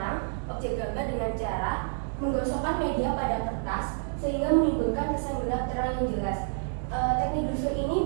objek gambar dengan cara menggosokkan media pada kertas sehingga menimbulkan kesan gelap terang yang jelas. Teknik Dussel ini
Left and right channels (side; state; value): left; silent; digital silence